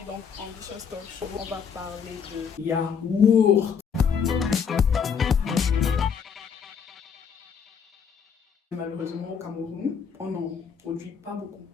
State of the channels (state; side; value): quieter; right; 6.8 dB